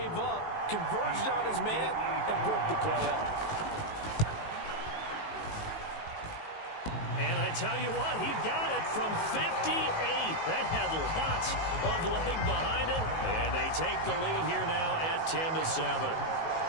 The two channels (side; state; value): right; late; 19 ms